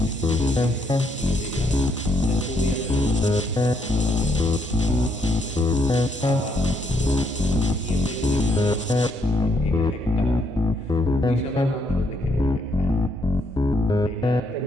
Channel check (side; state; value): both; normal; correlation 0.73